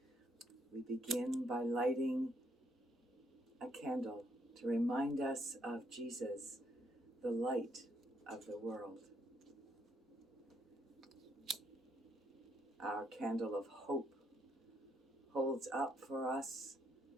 We begin by lighting a candle to remind us of Jesus, the light of the world. Our candle of hope holds up for us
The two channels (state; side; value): normal; both; correlation 0.72